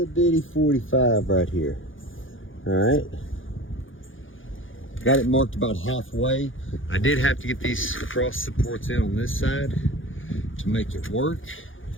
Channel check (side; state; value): right; late; 0.58 ms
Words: bitty 45 right here. All right. Got it marked about halfway. I did have to get these cross supports in on this side to make it work.